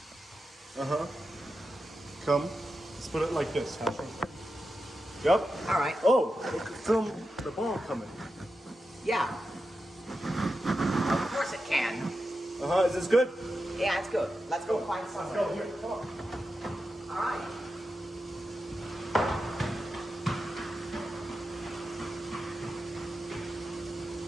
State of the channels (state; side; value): normal; both; correlation 0.90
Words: Come. Let's put it like this. Yep. All right. Oh, film the ball coming. Yeah. Of course it can. Is this good? Yeah, it's good. Let's go find somewhere. Go here. Come on. All right.